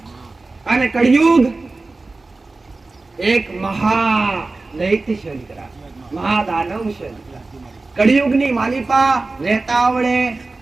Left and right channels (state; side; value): quieter; left; 3.5 dB